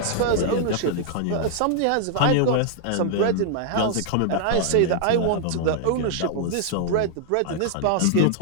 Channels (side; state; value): both; different; correlation -0.01